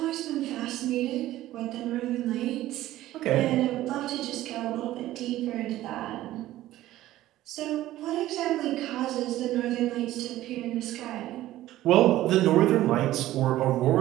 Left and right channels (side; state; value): left; quieter; 14.9 dB